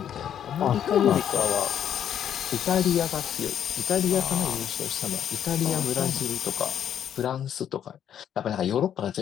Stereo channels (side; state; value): right; quieter; 9.6 dB